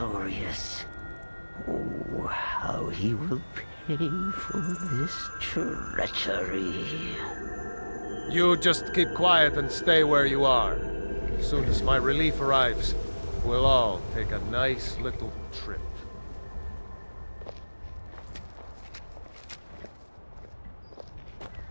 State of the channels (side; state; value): both; inverted; correlation -1.00